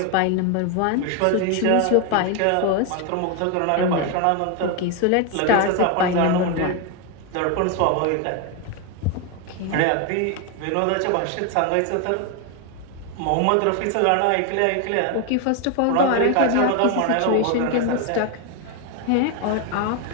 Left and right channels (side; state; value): both; different; correlation 0.01